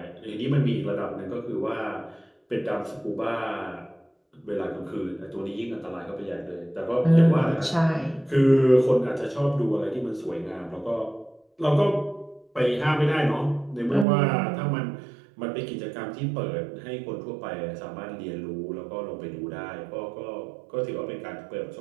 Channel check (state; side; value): drops out; left; at 14.1 s